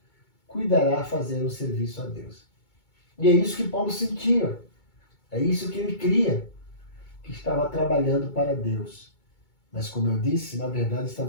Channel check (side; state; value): right; late; 2.2 ms